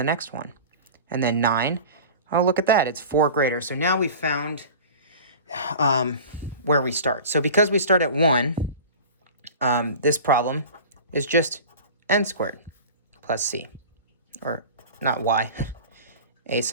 next one. And then 9, oh, look at that. It's 4 greater. So now we found where we start. So because we start at 1, this problem is just n squared plus c. Or not y, a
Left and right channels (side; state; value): both; inverted; correlation -0.37